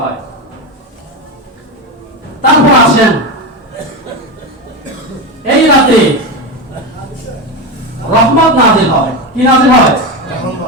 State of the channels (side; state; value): both; normal; correlation 0.17